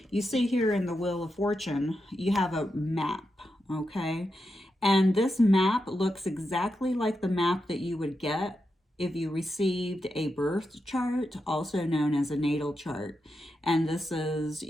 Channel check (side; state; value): both; normal; correlation 0.87